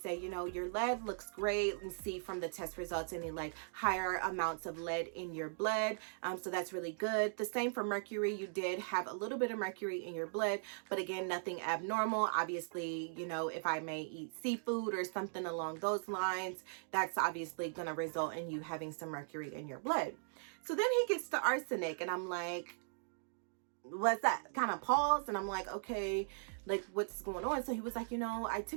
you know, your lead looks great. You can see from the test results any like higher amounts of lead in your blood. So that's really good. The same for mercury. You did have a little bit of mercury in your blood, but again, nothing abnormal. Obviously, you know, if I may eat seafood or something along those lines, that's obviously going to result in you having some mercury in your blood. So then he gets to arsenic and I'm like, what's that? Kind of paused and I'm like, okay, like what's going on? So he was like, you know, I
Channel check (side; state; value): left; silent; digital silence